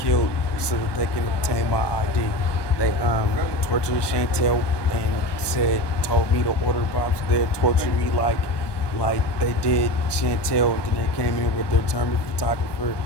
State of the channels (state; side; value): late; right; 1.2 ms